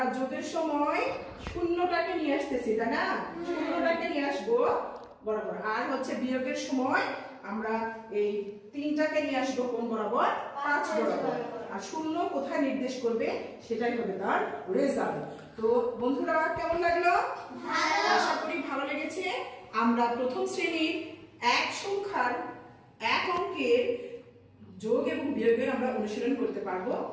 যোগের সময় শূন্যটাকে নিয়ে আসতেছি, তাই না, শূন্যটাকে নিয়ে আসবো বরাবর। আর হচ্ছে বিয়োগের সময় আমরা এই 3টাকে নিয়ে আসবো কোন বরাবর, 5 বরাবর। আর শূন্য কোথায় নির্দেশ করবে সেটাই হবে তার রেজাল্ট। তো বন্ধুরা কেমন লাগলো, আশা করি ভালো লেগেছে। আমরা প্রথম শ্রেণীর এক সংখ্যার এক অঙ্কের যোগ এবং বিয়োগের আমরা অনুশীলন করতে পারবো।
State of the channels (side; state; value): both; identical; correlation 1.00